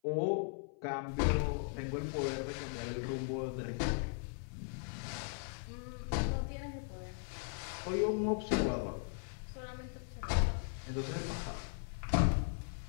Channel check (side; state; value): right; silent; 52 dB below the other